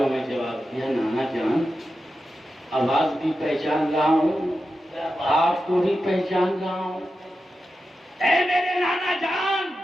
میں جواب دیا، نانا جان آواز بھی پہچان رہا ہوں، آپ کو بھی پہچان رہا ہوں، اے میرے نانا جان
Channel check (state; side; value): normal; both; correlation 0.91